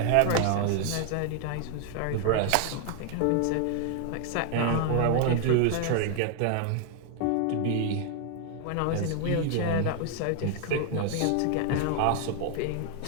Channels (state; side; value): different; both; correlation 0.00